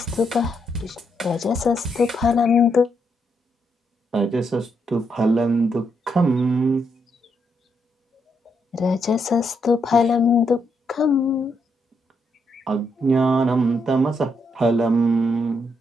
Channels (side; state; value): both; normal; correlation 0.78